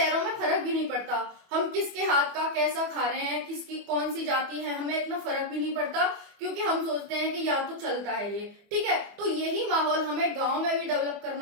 में फर्क भी नहीं पड़ता, हम किसके हाथ का कैसा खा रहे हैं, किसकी कौन सी जाति है, हमें इतना फर्क भी नहीं पड़ता, क्योंकि हम सोचते हैं कि या तो चलता है ये। ठीक है, तो यही माहौल हमें गांव में भी डेवलप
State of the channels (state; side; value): late; left; 24 ms